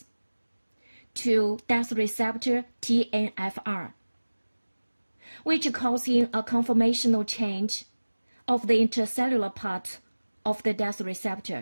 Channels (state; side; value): inverted; both; correlation -1.00